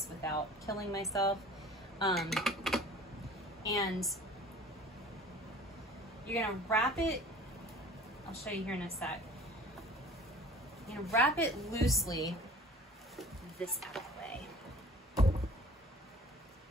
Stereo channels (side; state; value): both; normal; correlation 0.46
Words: without killing myself. And you're gonna wrap it, I'll show you here in a sec. You're gonna wrap it loosely, this out of the way.